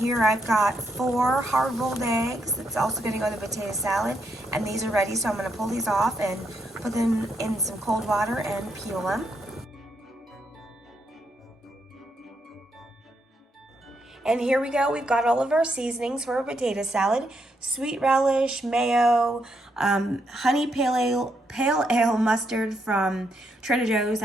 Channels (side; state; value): both; normal; correlation 0.78